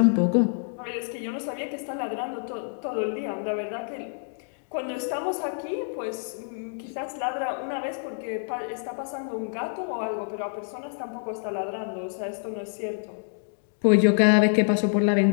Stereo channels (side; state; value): right; silent; 60 dB below the other